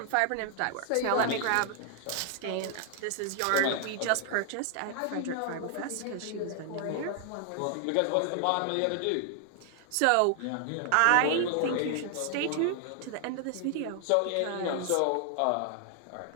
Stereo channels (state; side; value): different; both; correlation 0.00